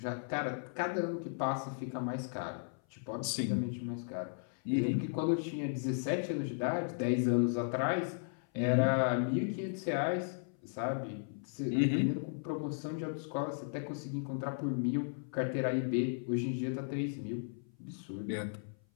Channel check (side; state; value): right; silent; 54 dB below the other